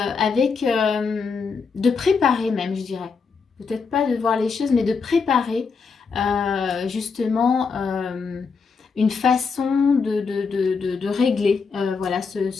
préparer même, je dirais. Peut-être pas de voir les choses, mais de préparer justement une façon de régler voilà,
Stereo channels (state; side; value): quieter; right; 5.2 dB